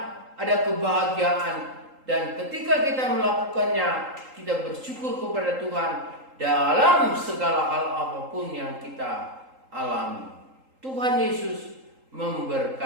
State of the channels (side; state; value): left; late; 3.8 ms